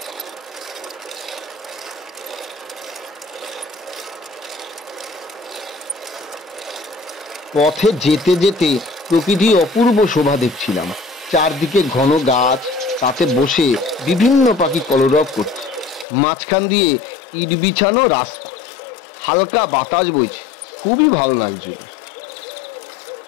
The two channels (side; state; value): right; drops out; at 16.1 s